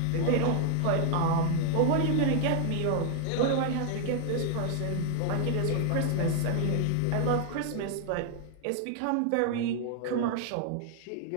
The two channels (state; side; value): different; both; correlation 0.00